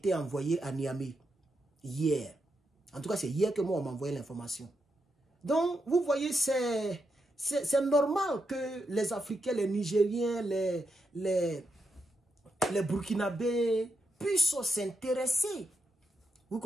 envoyé à Niamey hier. En tout cas, c'est hier que moi, on m'a envoyé l'information. Donc, vous voyez, c'est normal que les Africains, les Nigériens, les Burkinabés puissent s'intéresser, vous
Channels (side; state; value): both; normal; correlation 0.84